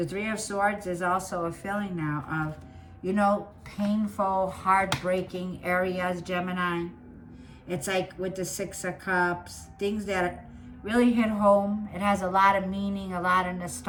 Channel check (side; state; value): both; identical; correlation 1.00